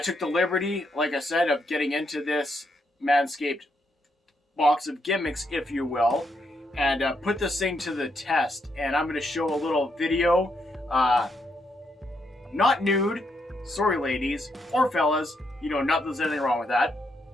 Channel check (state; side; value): normal; both; correlation 0.78